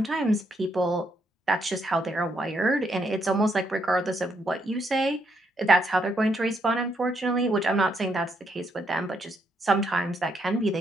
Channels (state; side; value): normal; both; correlation 0.76